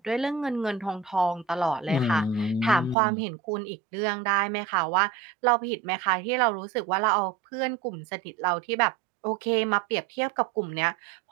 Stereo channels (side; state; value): left; drops out; at 3.0 s